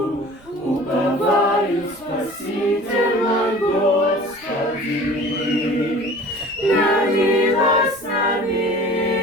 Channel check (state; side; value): noise; right; rumble, 26 dB below the sound